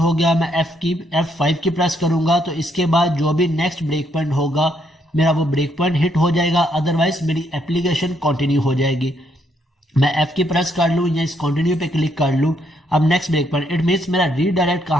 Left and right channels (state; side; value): normal; both; correlation 0.73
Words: गया। मैं F5 की प्रेस करूंगा तो इसके बाद जो भी नेक्स्ट ब्रेक पॉइंट होगा मेरा वो ब्रेक पॉइंट हिट हो जाएगा, अदरवाइज मेरी एप्लीकेशन कंटिन्यू हो जाएगी। मैं F की प्रेस कर लूँ या इस कंटिन्यू पे क्लिक कर लूँ। अब next break point, it means मेरा रीडायरेक्ट